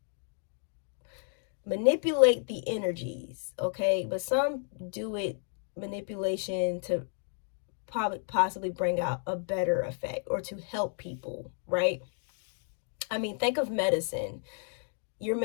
manipulate the energies. Okay. But some do it manipulation to possibly bring out a better effect or to help people, right? I mean, think of medicine. You're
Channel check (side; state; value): right; silent; 56 dB below the other